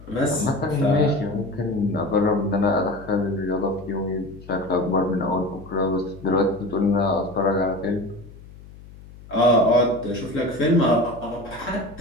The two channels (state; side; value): noise; left; hum, 19 dB below the sound